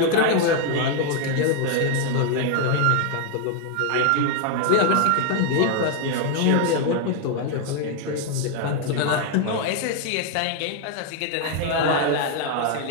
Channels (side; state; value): both; different; correlation 0.00